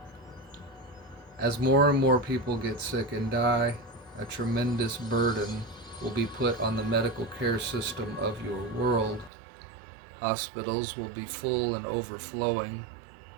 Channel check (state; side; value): drops out; left; at 9.3 s